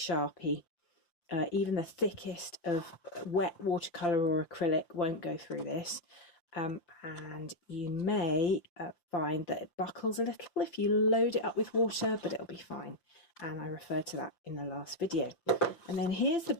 Even the thickest of wet watercolour or acrylic won't go through this. And you may find that it buckles a little if you load it up with water, but it'll be fine. And I referred to that in the last video. And then here's the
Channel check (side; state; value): right; late; 5.8 ms